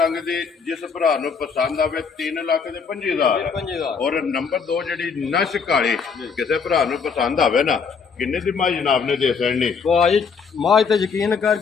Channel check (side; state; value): right; quieter; 5.7 dB